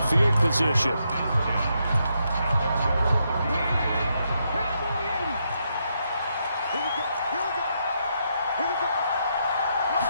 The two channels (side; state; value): both; inverted; correlation -0.79